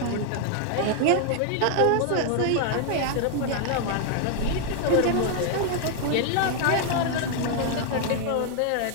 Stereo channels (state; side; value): different; both; correlation 0.00